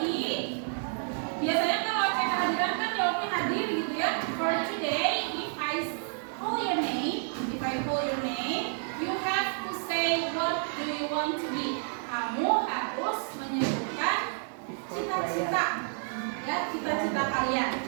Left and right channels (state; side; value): silent; left; 58 dB below the other